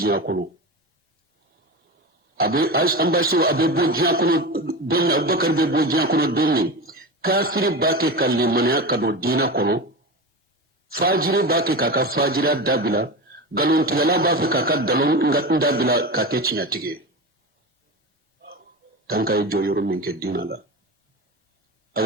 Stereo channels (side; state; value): both; normal; correlation 0.24